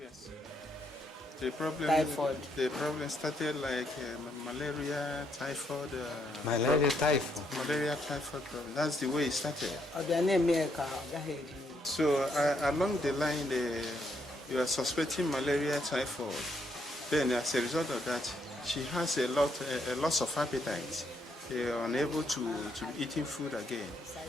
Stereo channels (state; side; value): normal; both; correlation 0.74